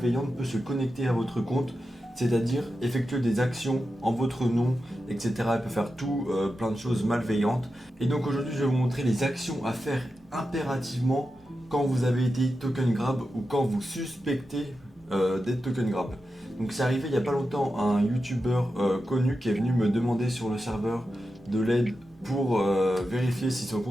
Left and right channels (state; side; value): normal; both; correlation 0.90